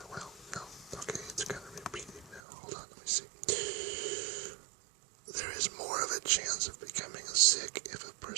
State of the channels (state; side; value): drops out; left; at 2.4 s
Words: well, no, okay, it's kind of repeating now. Hold on, let me see. There is more of a chance of becoming sick if a